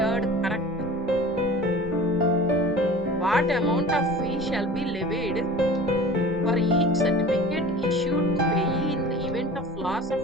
correct. What amount of fee shall be levied for each certificate issued to payee in the event of loss of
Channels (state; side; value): normal; both; correlation 0.40